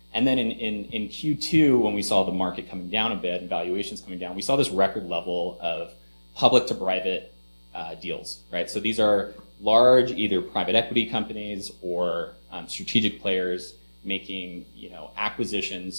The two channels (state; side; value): inverted; both; correlation -1.00